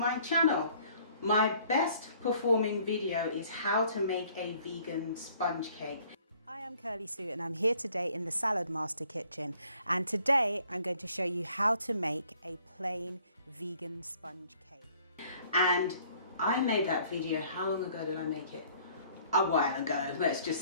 channel. My best performing video is how to make a vegan sponge cake. Hi, I'm Curly Sue and I'm here today in the Salad Master kitchen, and today I'm going to show you how to make a plain vegan sponge cake. And I made that video, how long ago did I make it? A while ago, let's just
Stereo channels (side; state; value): both; inverted; correlation -0.59